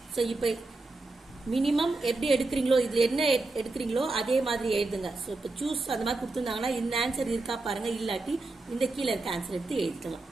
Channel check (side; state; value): left; quieter; 3.2 dB